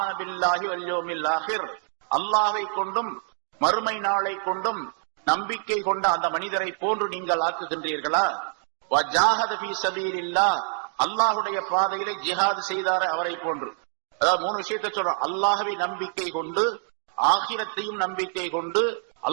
பில்லாஹி வல் யௌமில் ஆகிர். அல்லாஹ்வை கொண்டும் மறுமை நாளை கொண்டும் நம்பிக்கை கொண்ட அந்த மனிதரை போன்று நீங்கள் ஆக்குகின்றீர்களா? வஜாஹத ஃபீ ஸபீலில்லாஹ். அல்லாஹ்வுடைய பாதையிலே ஜிஹாத் செய்தாரே அவரை போன்று. அதாவது 3 விஷயத்தை சொல்றோம். அல்லாஹ்வை நம்பிக்கை கொண்டு, ஆகிரத்தையும் நம்பிக்கை கொண்டு,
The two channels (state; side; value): silent; left; 61 dB below the other